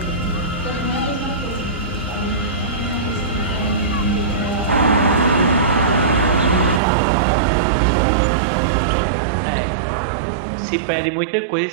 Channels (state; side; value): drops out; left; at 6.8 s